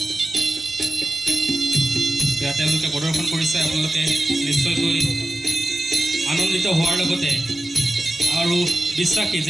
তেওঁলোকে প্ৰদৰ্শন কৰিছে, আপোনালোকে নিশ্চয়কৈ আনন্দিত হোৱাৰ লগতে আৰু বিশ্বাসী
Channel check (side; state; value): both; normal; correlation 0.92